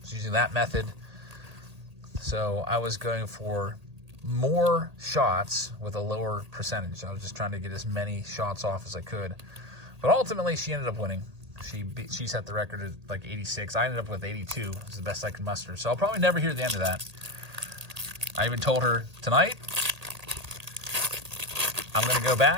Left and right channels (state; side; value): late; left; 1.8 ms